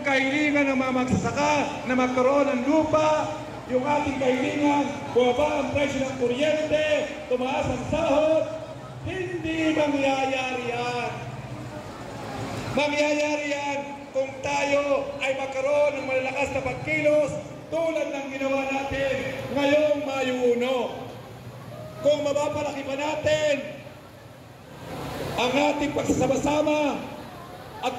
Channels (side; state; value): both; identical; correlation 1.00